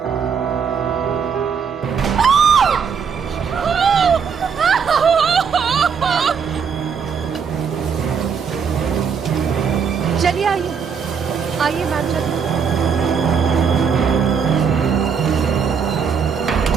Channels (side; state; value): left; quieter; 6.5 dB